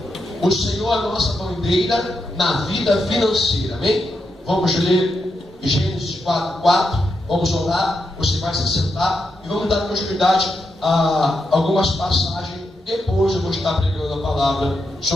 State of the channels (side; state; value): both; normal; correlation 0.84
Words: O Senhor é a nossa bandeira na vida financeira, amém? Vamos ler Gênesis 4:4, vamos orar, você vai se assentar e vamos dar continuidade a algumas passagens. Depois eu vou estar pregando a palavra